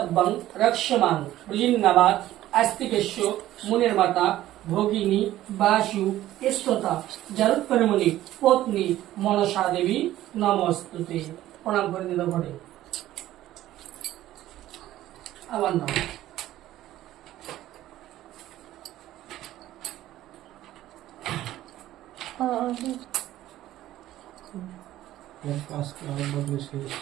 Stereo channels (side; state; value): left; quieter; 14.2 dB